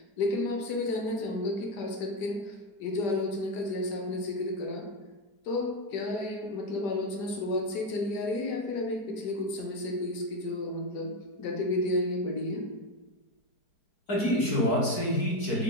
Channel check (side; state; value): right; late; 4.6 ms